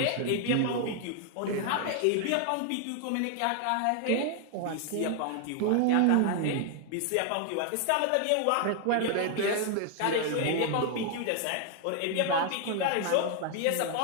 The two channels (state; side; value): different; both; correlation 0.00